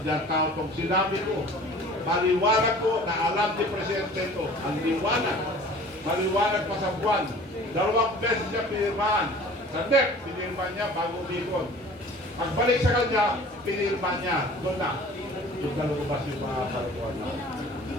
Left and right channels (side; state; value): both; normal; correlation 0.46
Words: tao itong sinabi ko. Maliwanag ko na alam ni Presidente ito. Ang liwanag. Maliwanag pa sa buwan. 2 beses siya pinirmahan. Sa NEP, pinirmahan niya bago umikot. Pagbalik sa kanya, pinirmahan niya. Doon na. Doon na lumabas yung mga kalukuhan na.